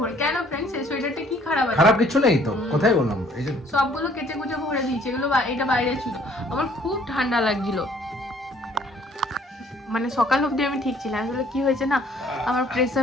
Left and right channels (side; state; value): both; normal; correlation 0.59